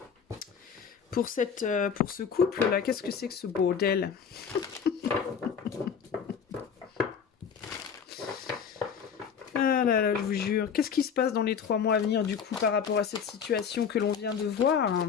Pour ce couple-là, qu'est-ce que c'est que ce bordel? Ah là là, je vous jure. Qu'est-ce qui se passe dans les 3 mois à venir, du coup, par rapport à cette situation que l'on vient de voir?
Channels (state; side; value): quieter; right; 6.9 dB